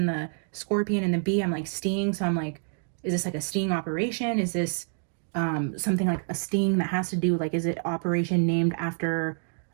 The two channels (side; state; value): left; silent; 56 dB below the other